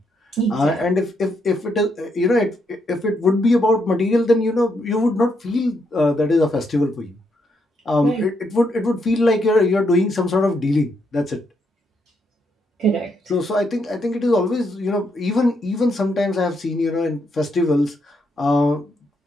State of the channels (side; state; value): both; normal; correlation 0.77